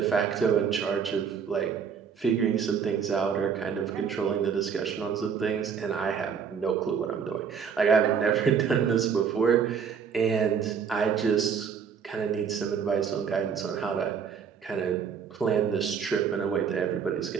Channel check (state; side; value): quieter; left; 6.8 dB